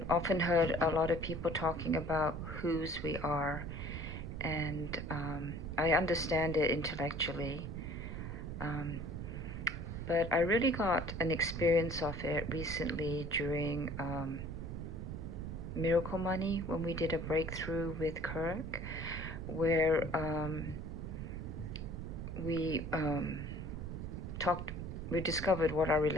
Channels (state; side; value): noise; right; rumble, 6 dB below the sound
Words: often heard a lot of people talking about whose we are, and I understand it intellectually. Um, but I really got an experience of it recently during Miracle Money when we did a breakthrough with Kirk, where we talked, we discovered what our